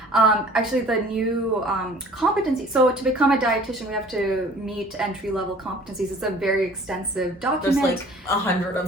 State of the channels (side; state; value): both; normal; correlation 0.50